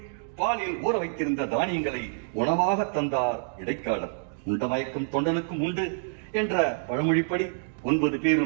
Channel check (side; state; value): left; silent; digital silence